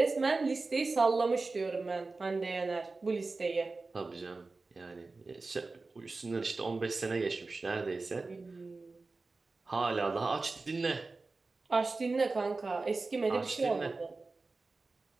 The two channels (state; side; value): quieter; left; 3.7 dB